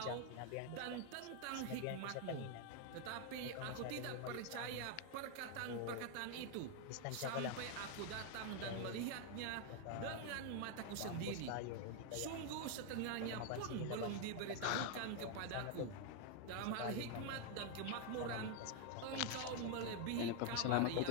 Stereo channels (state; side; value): different; both; correlation 0.01